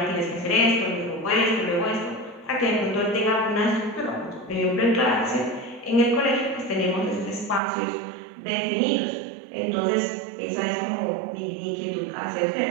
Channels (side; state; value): left; drops out; at 7.6 s